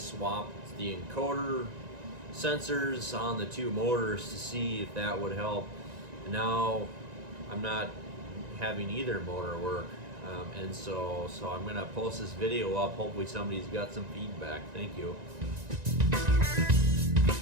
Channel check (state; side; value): late; left; 1.9 ms